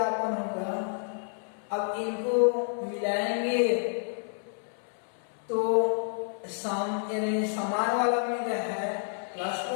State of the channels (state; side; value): silent; right; 57 dB below the other